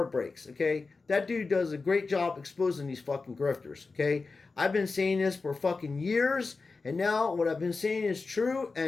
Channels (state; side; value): quieter; right; 4.1 dB